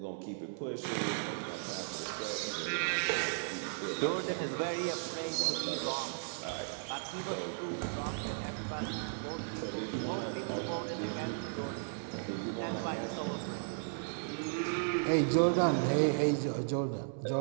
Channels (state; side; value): silent; left; 54 dB below the other